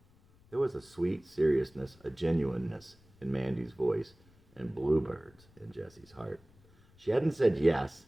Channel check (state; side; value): noise; left; rumble, 28 dB below the sound